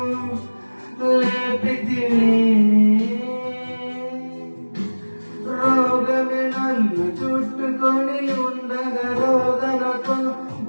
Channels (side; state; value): both; inverted; correlation -1.00